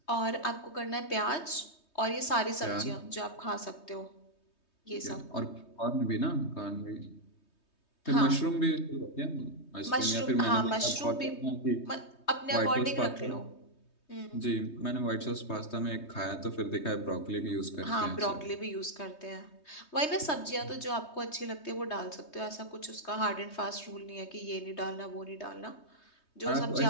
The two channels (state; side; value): late; right; 3.2 ms